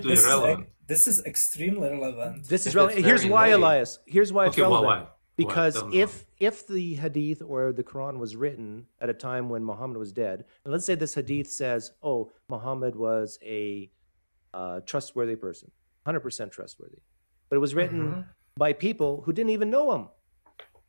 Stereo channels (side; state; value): both; inverted; correlation -1.00